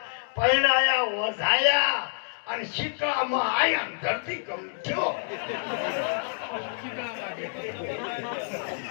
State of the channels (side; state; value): right; silent; digital silence